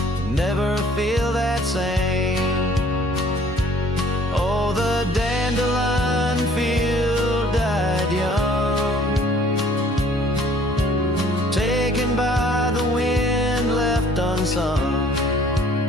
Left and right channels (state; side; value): normal; both; correlation 0.56